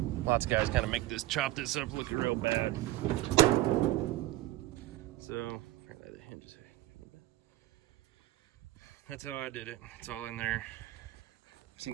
lots of guys kind of chop this up looking real bad. So that's how I did it. It's all in there. I've seen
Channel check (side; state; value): left; quieter; 16.5 dB